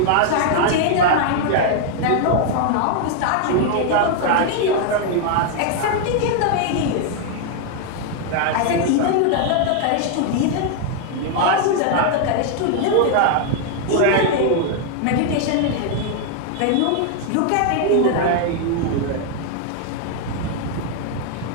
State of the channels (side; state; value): both; different; correlation 0.00